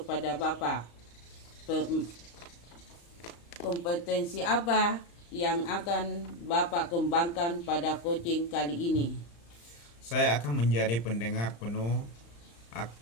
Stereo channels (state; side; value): late; right; 35 ms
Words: Bapak, kompetensi apa yang akan Bapak kembangkan pada coaching kali ini? Saya akan menjadi pendengar penuh,